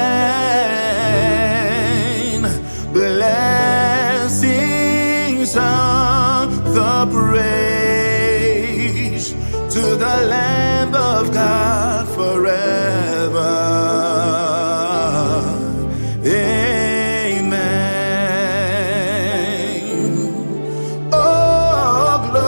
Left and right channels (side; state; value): both; inverted; correlation -1.00